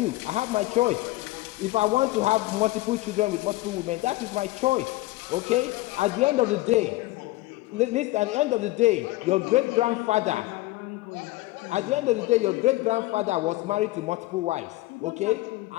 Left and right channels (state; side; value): quieter; right; 18.6 dB